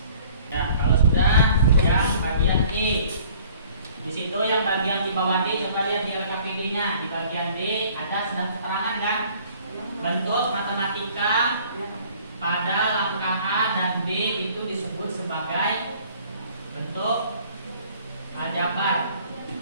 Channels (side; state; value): both; inverted; correlation -0.54